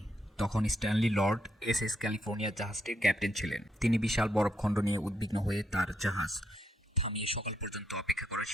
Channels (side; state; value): both; normal; correlation 0.77